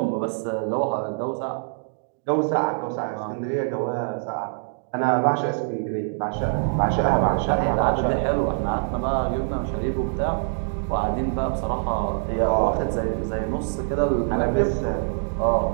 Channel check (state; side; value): silent; left; digital silence